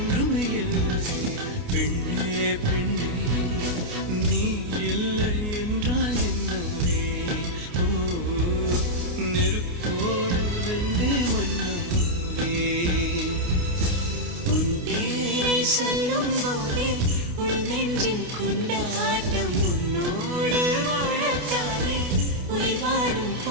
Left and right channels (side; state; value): left; late; 28 ms